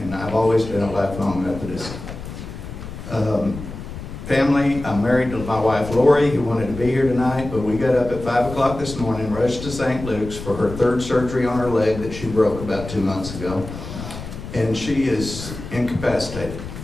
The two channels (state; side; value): noise; left; rumble, 10 dB below the sound